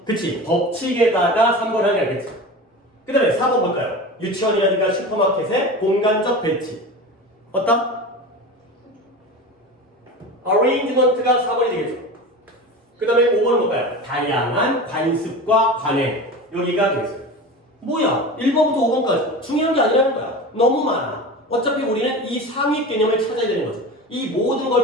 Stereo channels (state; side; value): normal; both; correlation 0.30